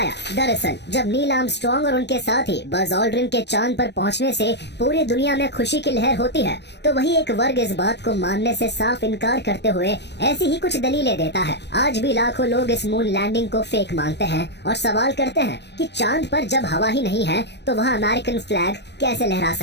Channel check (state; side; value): late; right; 0.50 ms